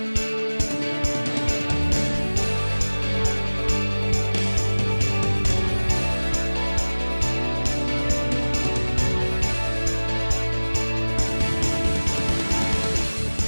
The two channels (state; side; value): inverted; both; correlation -1.00